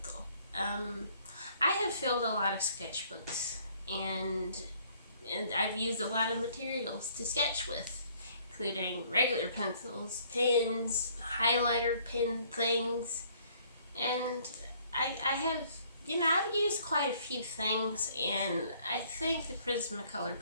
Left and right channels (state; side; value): inverted; both; correlation -0.61